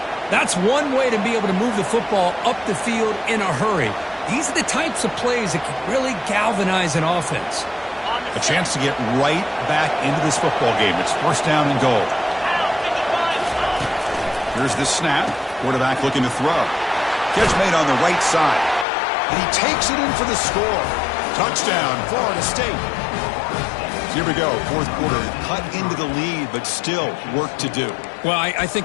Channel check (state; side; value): drops out; right; at 18.9 s